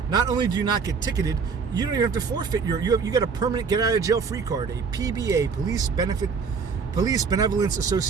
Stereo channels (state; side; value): quieter; left; 5.4 dB